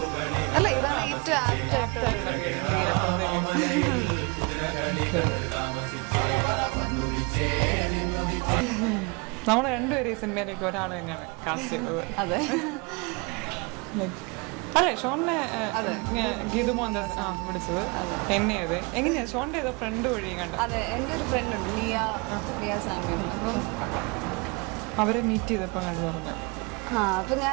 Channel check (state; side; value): quieter; left; 30.0 dB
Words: അല്ല ഇതാണ് ഏറ്റവും ആപ്റ്റായിട്ടുള്ള നമ്മൾ രണ്ടുപേരും ഈ സിനിമയിലേക്ക് ഒരാൾ തന്നെയാണ് കാസ്റ്റ് ചെയ്തത്. അതെ അല്ലേ? ഷോണിനെ ഗീതു മോഹൻദാസ് വിളിച്ചത് എന്നെയത് എങ്ങനെയാ? ഷോണിന്റെ ഏതോ ഫ്രണ്ട് വഴി കണ്ട? അതെ, എൻ്റെ ഒരു ഫ്രണ്ട് ഉണ്ട്, ലിയ സാമ്യം. അപ്പം അവരെ മീറ്റ് ചെയ്തപ്പോൾ കണ്ടു പറഞ്ഞു. അപ്പം